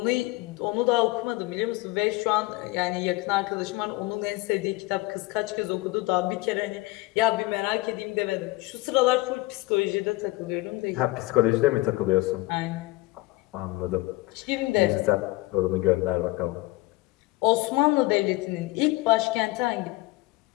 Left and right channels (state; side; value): quieter; right; 20.7 dB